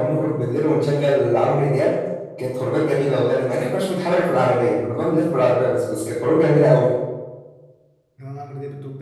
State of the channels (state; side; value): identical; both; correlation 1.00